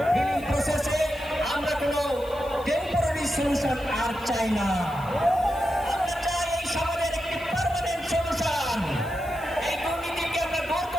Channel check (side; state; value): left; noise; hiss, 22 dB below the sound